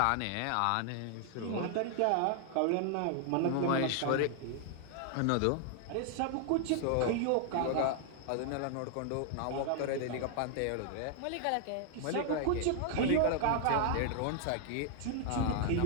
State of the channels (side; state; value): both; different; correlation 0.00